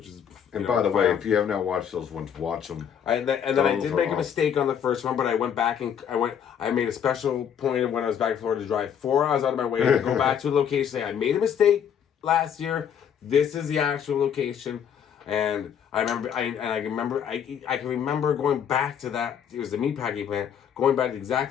is. And by the way, if you have not watched those ones, watch them. And then I did make a mistake on the first one, but I went back and I made a special point of when I was back in Florida to drive 4 hours out of my way to go back to a location. Say I made a mistake last year. This is the actual location. And I can remember going back to that. It was the meatpacking plant. Going back to the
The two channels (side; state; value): right; quieter; 8.4 dB